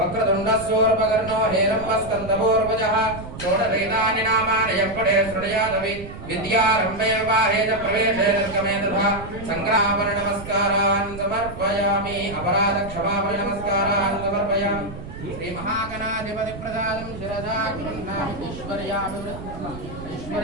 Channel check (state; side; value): noise; right; rumble, 12 dB below the sound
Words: हेरम्बस्कन्दपूर्वजः षोडशैतानि नामानि यप्पडे शृणुयादपि विद्यारम्भे विवाहे च प्रवेशे निर्गमे तथा सङ्ग्रामनमस्कारान् समर्पयामि। अपराधक्षमापणि नमस्कारान् समर्पयामि। श्री महागणाधिपति प्रसादं शिरसा गृह्णामि।